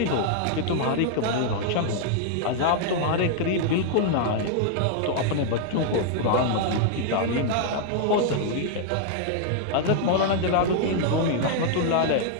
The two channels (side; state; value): both; different; correlation 0.00